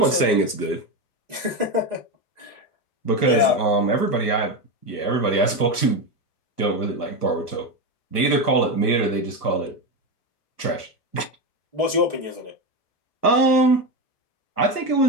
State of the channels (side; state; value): right; late; 1.3 ms